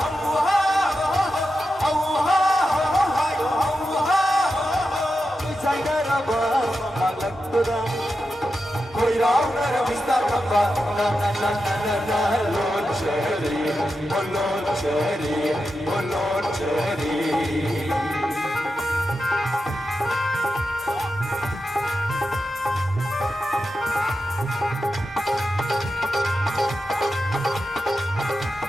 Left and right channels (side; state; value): both; normal; correlation 0.89